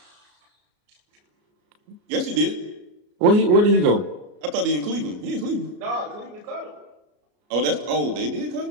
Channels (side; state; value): left; late; 33 ms